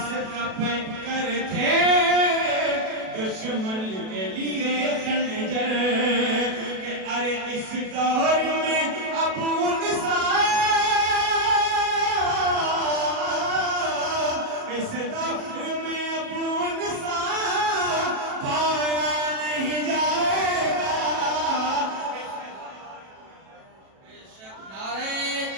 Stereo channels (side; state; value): left; late; 37 ms